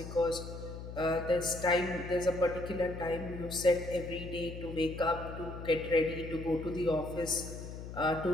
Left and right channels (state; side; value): noise; left; hum, 10 dB below the sound